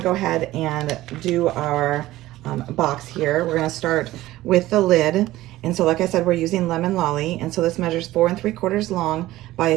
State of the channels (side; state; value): left; quieter; 16.3 dB